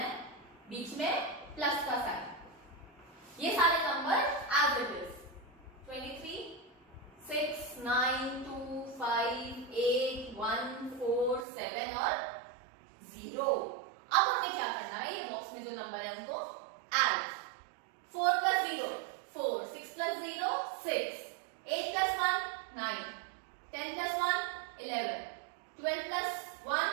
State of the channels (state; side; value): drops out; left; at 11.5 s